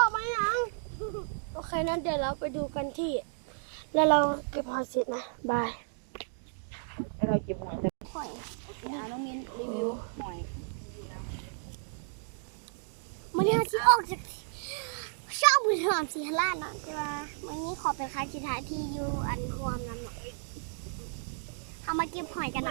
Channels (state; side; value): silent; left; digital silence